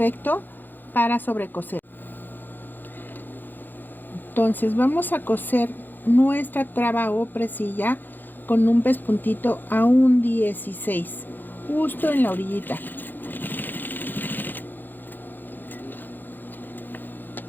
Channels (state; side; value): late; right; 0.089 ms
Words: para sobrecoser. Entonces vamos a coser nuestra traba o presilla con un pespuntito a un 16, justo en la orillita,